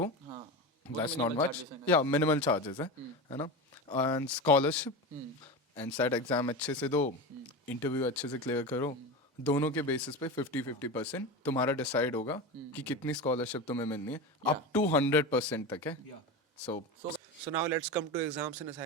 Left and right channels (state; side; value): normal; both; correlation 0.23